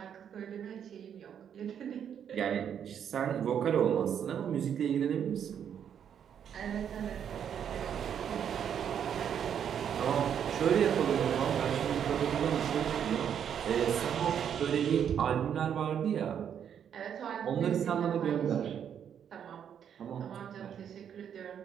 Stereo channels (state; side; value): quieter; left; 8.6 dB